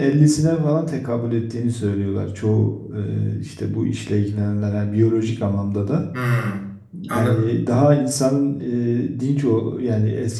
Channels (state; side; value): identical; both; correlation 1.00